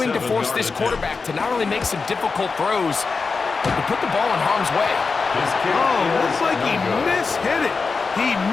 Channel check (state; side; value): quieter; right; 4.6 dB